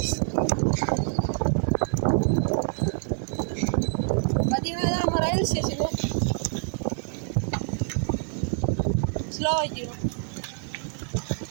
பார்த்தீங்கன்னா இதான் நம்ம ரயில்வே ஸ்டேஷனு. ஸ்லோவாக்கிடும்.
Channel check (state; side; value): silent; left; 59 dB below the other